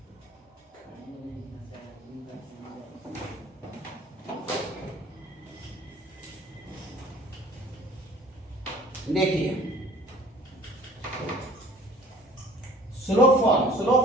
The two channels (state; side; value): normal; both; correlation 0.50